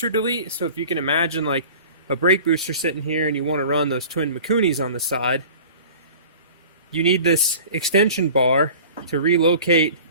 delete. So if you can imagine like a brake booster sitting here and you want to run those twin Mikunis on the side, you need this extension bar to relocate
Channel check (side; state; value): both; inverted; correlation -0.41